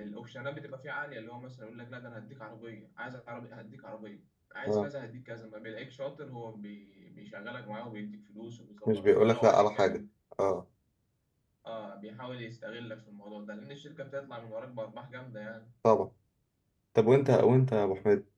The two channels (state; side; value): identical; both; correlation 1.00